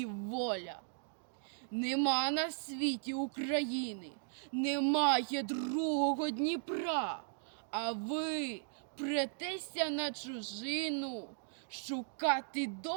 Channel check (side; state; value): left; silent; digital silence